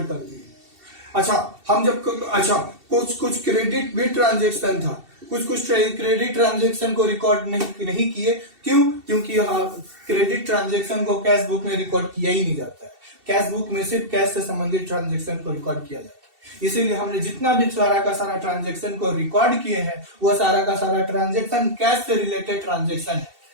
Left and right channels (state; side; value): late; left; 2.7 ms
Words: कर दिए। कुछ क्रेडिट भी ट्रांजेक्शन था। कुछ क्रेडिट ट्रांजेक्शन को रिकॉर्ड नहीं किए। क्यों? क्योंकि क्रेडिट ट्रांजेक्शन को कैश बुक में रिकॉर्ड किया ही नहीं जाता है। कैश बुक में सिर्फ कैश से संबंधित ट्रांजेक्शन को रिकॉर्ड किया जाता है। इसीलिए हमने जितना भी सारा का सारा ट्रांजेक्शन को रिकॉर्ड किए हैं, वह सारा का सारा ट्रांजेक्शन कैश से रिलेटेड ट्रांजेक्शन है।